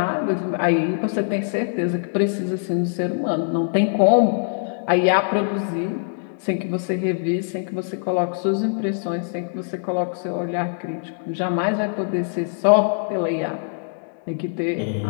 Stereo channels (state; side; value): silent; right; digital silence